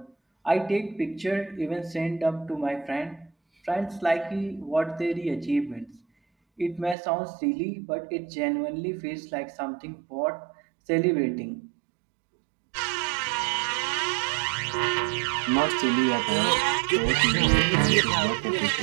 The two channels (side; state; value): left; drops out; at 7.0 s